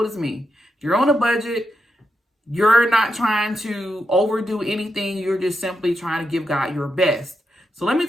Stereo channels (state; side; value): normal; both; correlation 0.85